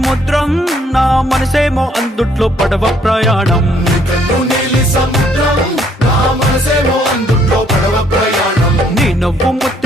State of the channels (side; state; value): both; normal; correlation 0.66